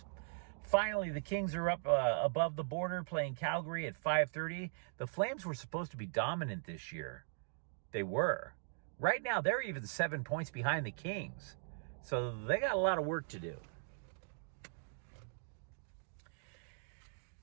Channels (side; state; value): left; silent; digital silence